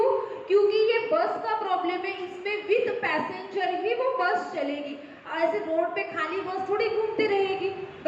क्योंकि ये बस का प्रॉब्लम है, इसमें विद पैसेंजर ही वो बस चलेगी। ऐसे रोड पे खाली बस थोड़ी घूमती रहेगी,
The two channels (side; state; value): both; identical; correlation 1.00